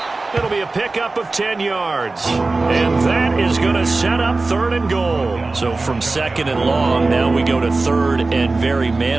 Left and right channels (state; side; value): quieter; left; 3.4 dB